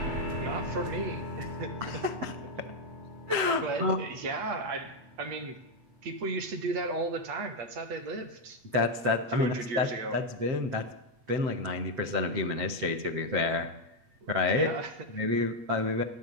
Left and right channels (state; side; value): late; left; 8.3 ms